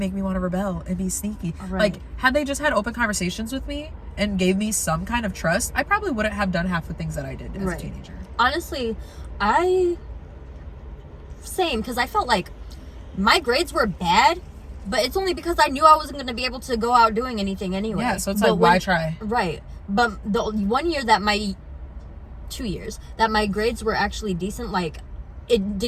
me want to rebel and be sneaky. Like, had they just had open conversations with me and gave me some kind of trust, I probably wouldn't have done half the things that I did as a teenager. Honestly, same, because I felt like my grades were bad, But it's only because I knew I wasn't going to be able to go out doing anything anyway. Yeah, so it's like, why try? Right. But the 1 year that 2 years that my grades were actually decent, like it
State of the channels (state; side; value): identical; both; correlation 1.00